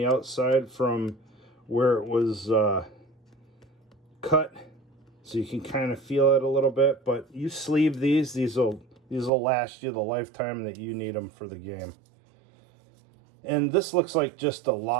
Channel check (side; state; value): left; drops out; at 9.3 s